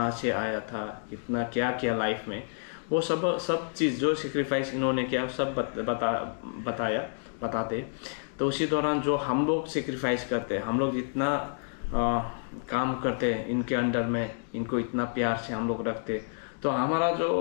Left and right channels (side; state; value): right; silent; digital silence